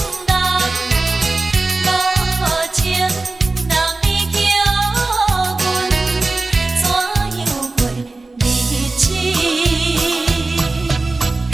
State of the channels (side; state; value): left; quieter; 3.3 dB